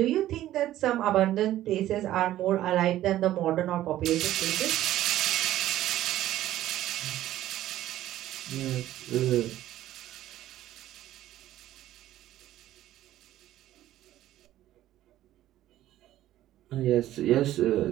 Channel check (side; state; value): left; quieter; 13.7 dB